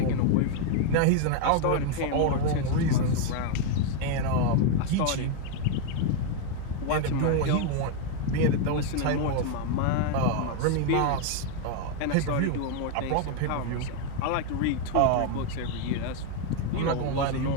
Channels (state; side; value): different; both; correlation 0.01